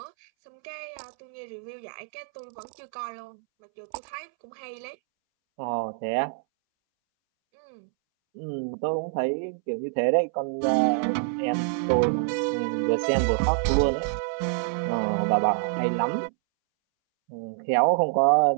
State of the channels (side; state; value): left; silent; 60 dB below the other